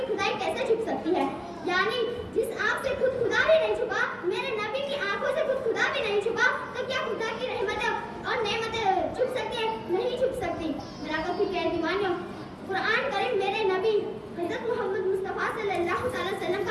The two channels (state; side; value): identical; both; correlation 1.00